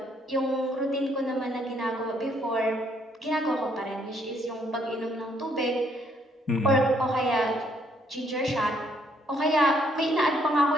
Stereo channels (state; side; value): normal; both; correlation 0.69